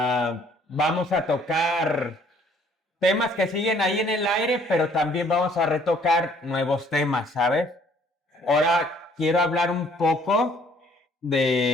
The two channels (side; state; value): both; normal; correlation 0.60